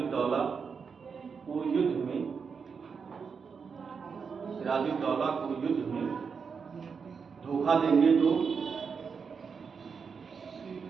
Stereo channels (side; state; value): left; quieter; 5.8 dB